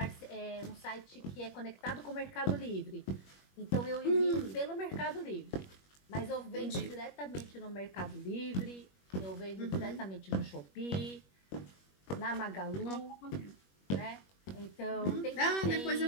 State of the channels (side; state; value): right; late; 21 ms